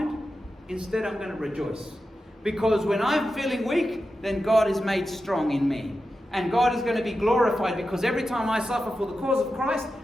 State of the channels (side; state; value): both; normal; correlation 0.91